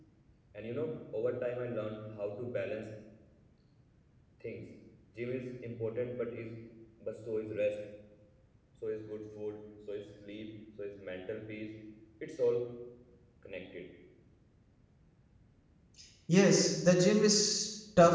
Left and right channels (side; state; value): both; identical; correlation 1.00